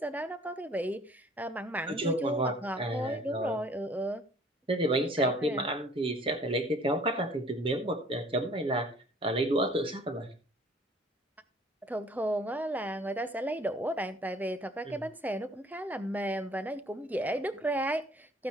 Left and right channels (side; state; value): both; normal; correlation 0.54